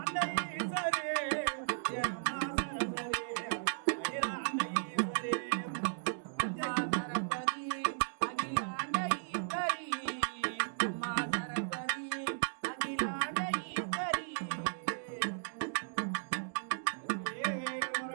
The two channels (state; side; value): silent; left; digital silence